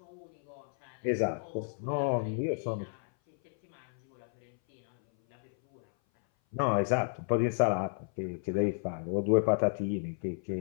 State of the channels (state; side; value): silent; right; 56 dB below the other